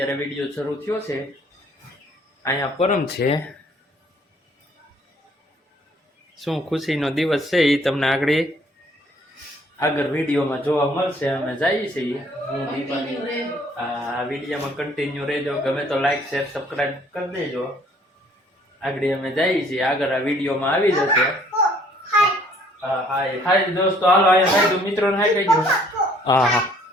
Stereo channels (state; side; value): normal; both; correlation 0.60